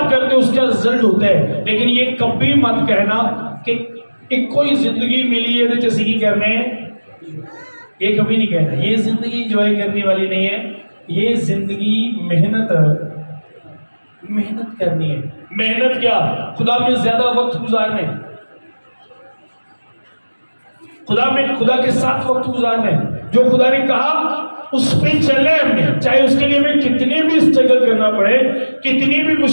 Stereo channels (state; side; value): inverted; both; correlation -1.00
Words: करते हो उसका रिजल्ट होता है। लेकिन ये कभी मत कहना कि कोई जिंदगी मिली है तो जैसे ही करने, ये कभी नहीं कहना। ये जिंदगी एंजॉय करने वाली नहीं है। ये जिंदगी मेहनत करनी है। मेहनत क्या? खुदा में ज्यादा वक्त गुजारने, खुदा के साथ वक्त गुजारने। जो खुदा ने कहा उस पे चलना है हमने, चाहे उसके लिए हमें कितने भी स्ट्रगल करना पड़े, कितनी भी